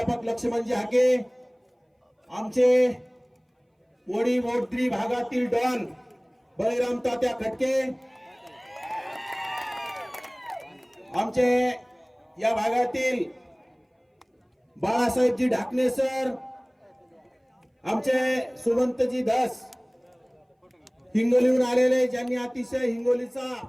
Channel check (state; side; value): identical; both; correlation 1.00